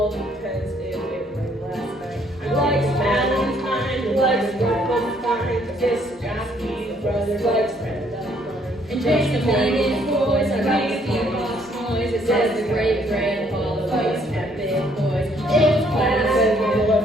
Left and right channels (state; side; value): normal; both; correlation 0.66